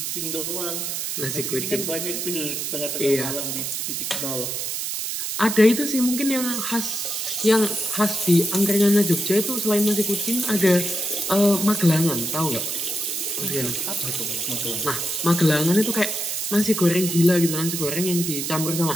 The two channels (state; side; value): noise; right; hiss, 3 dB below the sound